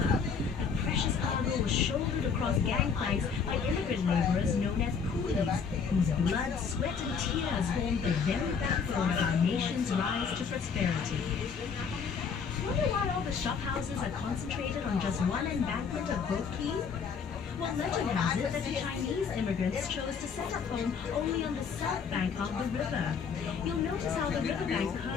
The precious cargo was shouldered across gangplanks by immigrant laborers known as coolies, whose blood, sweat, and tears formed the very backbone of our nation's rise to prosperity. Wonder why all the shop houses are concentrated on just one embankment of Boat Quay? Well, legend has it that the Chinese immigrants chose to set up home only on the south bank of the river. You'll notice how the riverbank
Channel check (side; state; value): right; quieter; 6.0 dB